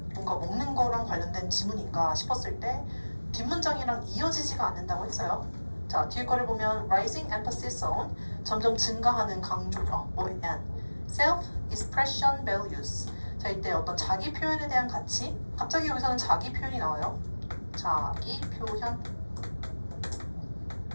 뭔가 먹는 거랑 관련된 지문인가 싶었을 때 뒷문장이랑 이어지지가 않는다고 했어요. 자, 뒤에 거를 보면 rising emphasis on 점점 증가하는 강조죠. and self-expression values. 자, 이때 어떤 자기 표현에 대한 가치. 갑자기 여기서는 자기 표현이 나와요. 자기 표현.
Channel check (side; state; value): both; inverted; correlation -1.00